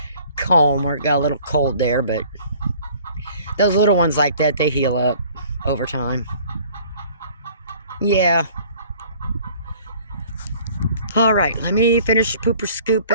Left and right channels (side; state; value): both; inverted; correlation -0.53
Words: comb where it got a little cold there, but those little ones like that, they heal up over time. Yeah. All right, let me finish pooper